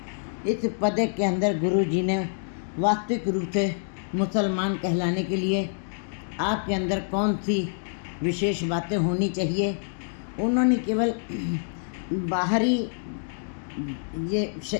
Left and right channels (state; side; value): silent; right; digital silence